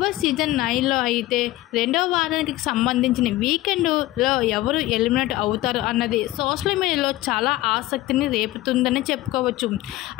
బాస్ సీజన్ 9లో అయితే రెండవ వారానికి సంబంధించిన వీకెండ్లో ఎవరు ఎలిమినేట్ అవుతారు అన్నది సోషల్ మీడియాలో చాలా ఆసక్తిని రేపుతుందని చెప్పుకోవచ్చు.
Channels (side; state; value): right; quieter; 16.9 dB